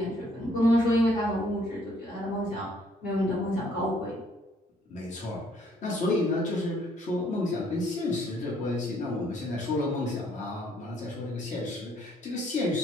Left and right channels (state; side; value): normal; both; correlation 0.65